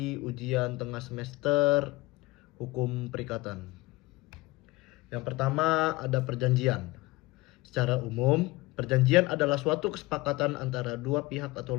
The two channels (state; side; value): quieter; right; 21.4 dB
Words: ujian tengah semester hukum perikatan. Yang pertama ada perjanjian. Secara umum, perjanjian adalah suatu kesepakatan antara dua pihak atau